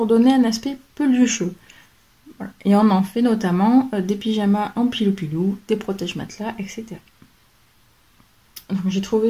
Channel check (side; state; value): both; identical; correlation 1.00